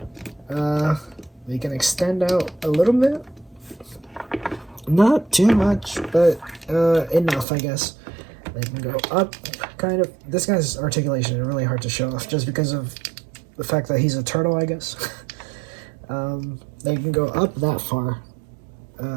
we go. They can extend out a little bit. Not too much, but enough, I guess. They can go up, kind of. This guy's articulation is really hard to show off just because of the fact that he's a turtle, I guess. They can go up that far.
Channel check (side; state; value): left; drops out; at 7.5 s